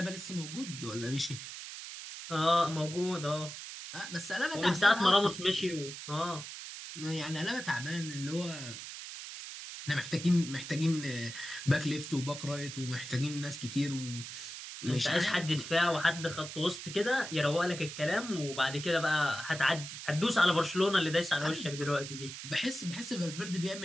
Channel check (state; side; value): noise; right; hiss, 10 dB below the sound